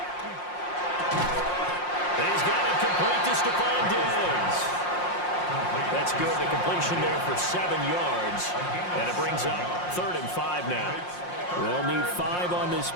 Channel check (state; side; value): late; right; 5.6 ms